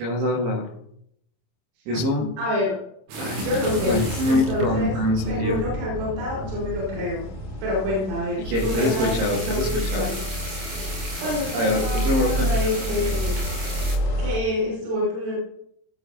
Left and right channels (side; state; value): left; late; 26 ms